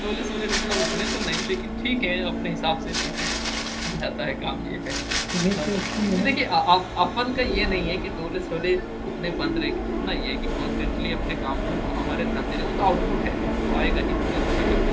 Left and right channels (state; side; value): identical; both; correlation 1.00